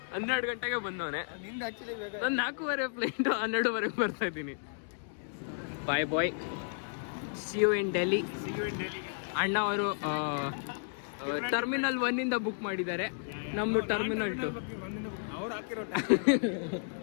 12 ಗಂಟೆಗೆ ಬಂದವನೆ. ನಿಂದು ಆಕ್ಚುಲಿ ನಾನು 4:30 ಫ್ಲೈಟು 12:30 ಬರ್ತಾ ಇದ್ದೀನಿ. ಬಾಯ್ bye, see you in Delhi. ಅಣ್ಣ ಅವರು ಟರ್ಮಿನಲ್ 1 ಬುಕ್ ಮಾಡಿದ್ದಾರೆ, ನಮ್ಮದು ಟರ್ಮಿನಲ್ 2. ಅವ್ರು ಹಾಕಿರೋ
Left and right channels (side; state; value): right; silent; digital silence